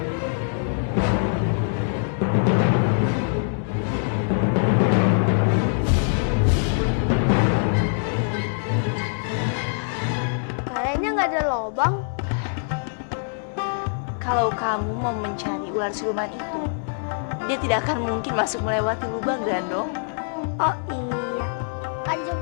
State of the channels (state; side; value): silent; right; digital silence